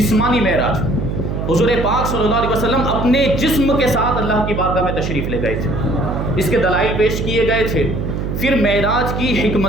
معراج۔ حضور پاک صلی اللہ علیہ وسلم اپنے جسم کے ساتھ اللہ کی بارگاہ میں تشریف لے گئے تھے، اس کے دلائل پیش کیے گئے تھے۔ پھر معراج کی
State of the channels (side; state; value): right; noise; hum, 3 dB below the sound